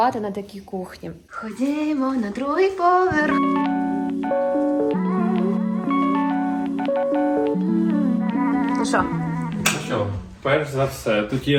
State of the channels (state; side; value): identical; both; correlation 1.00